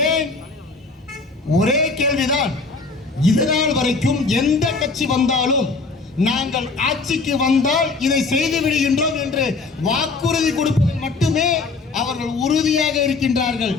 ஏன்? ஒரே கேள்விதான். இதனால் வரைக்கும் எந்த கட்சி வந்தாலும் நாங்கள் ஆட்சிக்கு வந்தால் இதை செய்து விடுகின்றோம் என்று வாக்குறுதி கொடுப்பதில் மட்டுமே அவர்கள் உறுதியாக இருக்கின்றார்கள்.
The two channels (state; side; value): quieter; right; 4.0 dB